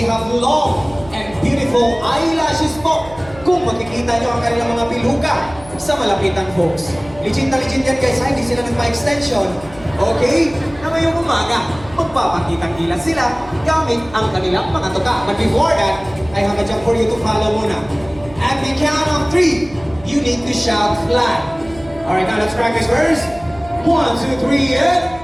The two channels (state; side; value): noise; right; hum, 19 dB below the sound